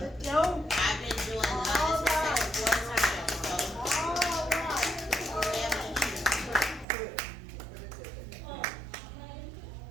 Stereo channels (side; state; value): left; drops out; at 6.9 s